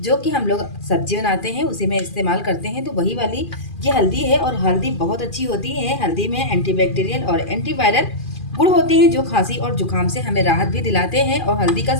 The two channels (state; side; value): late; right; 2.4 ms